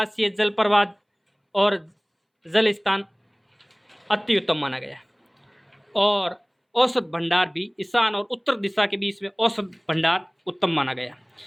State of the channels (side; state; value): both; identical; correlation 1.00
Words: जल प्रवाह और जल स्थान अति उत्तम माना गया है। और औसत भंडार भी ईशान और उत्तर दिशा के बीच में औसत भंडार उत्तम माना गया।